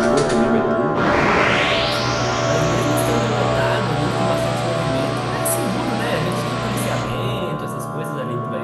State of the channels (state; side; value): identical; both; correlation 1.00